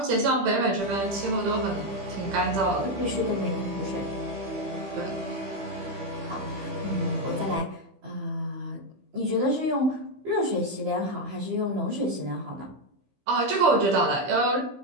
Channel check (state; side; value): late; left; 15 ms